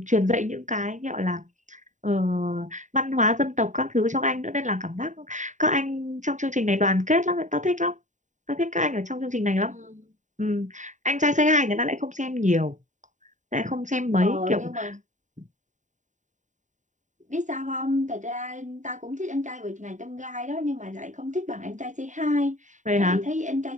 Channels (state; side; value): late; left; 0.36 ms